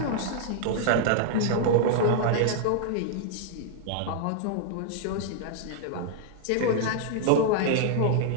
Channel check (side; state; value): both; different; correlation -0.01